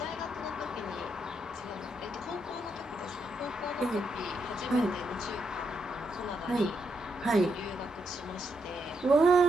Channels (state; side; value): normal; both; correlation 0.80